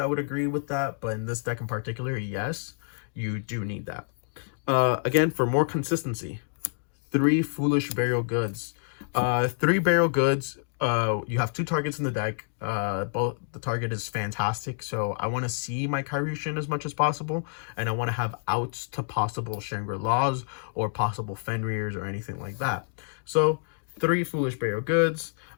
would agree with that, but in this deck in particular, yes, you do need that. Again, for more consistency, 3 Foolish Burial Goods. 3 Burial Goods You have two targets in the deck. Both the target is fantastic, so I want to see my Kairyu as much as possible, and I want to have outs to possible Shangri-Las or possible Fenrirs or anything like that. So 3 Foolish Burial Goods.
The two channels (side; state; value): right; silent; digital silence